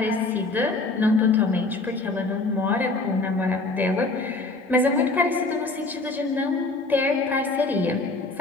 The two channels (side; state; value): right; quieter; 3.3 dB